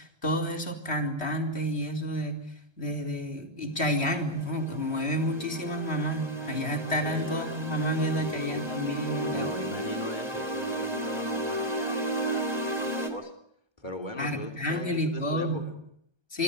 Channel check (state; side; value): late; left; 1.3 ms